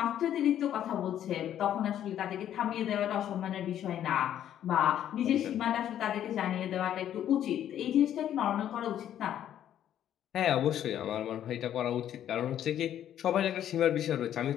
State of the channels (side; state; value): right; quieter; 10.8 dB